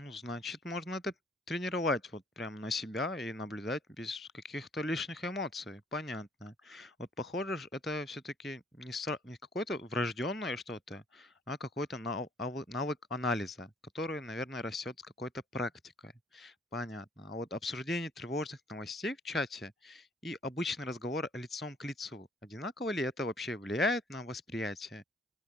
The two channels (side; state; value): both; normal; correlation 0.60